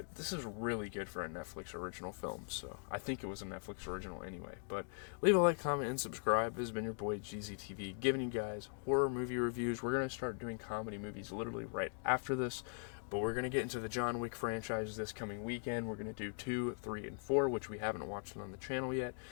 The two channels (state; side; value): silent; right; 51 dB below the other